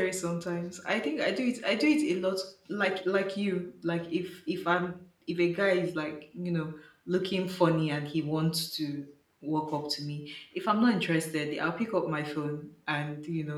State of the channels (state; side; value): identical; both; correlation 1.00